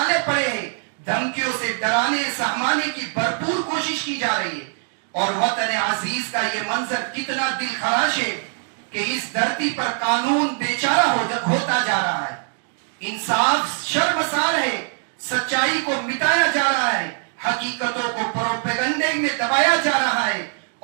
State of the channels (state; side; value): silent; left; 57 dB below the other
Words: پڑے ہیں. دھمکیوں سے ڈرانے سہمانے کی بھرپور کوشش کی جا رہی ہے. اور وطن عزیز کا یہ منظر کتنا دل خراش ہے کہ اس دھرتی پر قانون بیچارہ ہوتا جا رہا ہے، انصاف شرمسار ہے، سچائی کو مٹایا جا رہا ہے، حقیقتوں کو پروپیگنڈے میں دبایا جا رہا ہے.